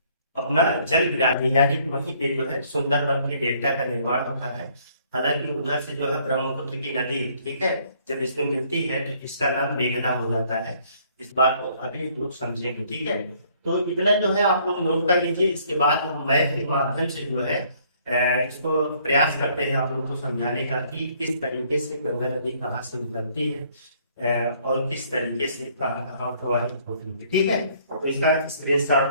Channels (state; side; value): inverted; both; correlation -0.63